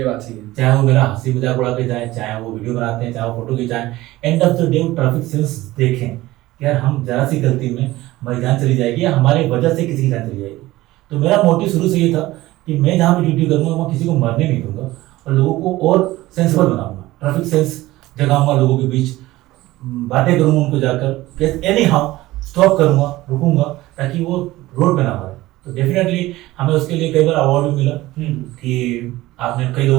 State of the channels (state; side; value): quieter; left; 17.6 dB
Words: बात सही है। चाहे वो मेरा हंसी मजाक उड़ा के जाए, चाहे वो वीडियो बनाते हैं, चाहे वो फोटो खिंचाएं, end of the day traffic sense देखें कि यार हम जरा सी गलती में हमारी जान चली जाएगी या हमारे वजह से किसी की जान चली जाएगी। तो मेरा मोटिव शुरू से ये था कि मैं जहाँ पे ड्यूटी करूँगा वहाँ किसी को मरने नहीं दूंगा और लोगों को और सेंसिबल बनाऊंगा, ट्रैफिक सेंस जगाऊंगा, लोगों के बीच बातें करूंगा उनको जाकर, एनी हाउ स्टॉप करूंगा, रुकूंगा, ताकि वो रोड पे ना मरे। तो डेफिनेटली हमें उसके लिए कई बार अवार्ड भी मिला कि आपने कई